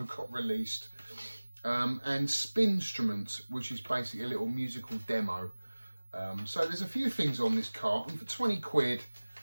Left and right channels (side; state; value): both; inverted; correlation -1.00